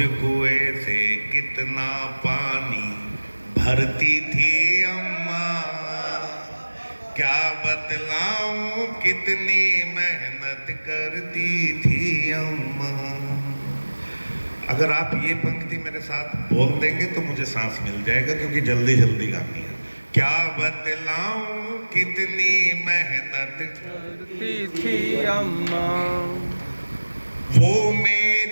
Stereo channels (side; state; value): both; inverted; correlation -1.00